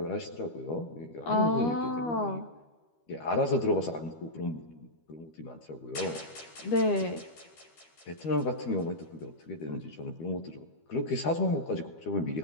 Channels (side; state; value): right; late; 13 ms